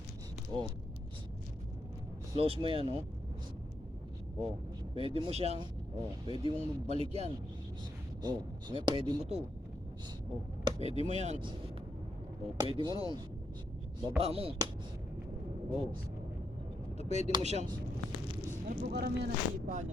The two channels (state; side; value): normal; both; correlation 0.81